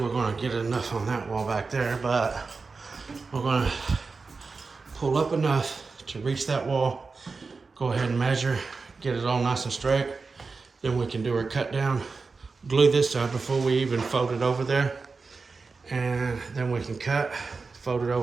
gonna get enough on that wall back there, but we're gonna pull up enough to reach that wall, go ahead and measure, get it all nice and straight. Then we can do our cut down, glue this side before we even fold it over there. And then we can cut, fold it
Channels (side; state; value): left; quieter; 4.3 dB